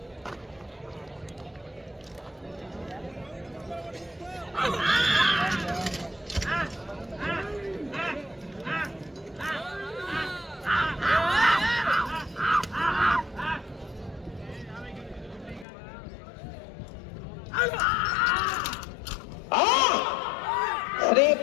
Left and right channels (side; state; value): right; drops out; at 15.7 s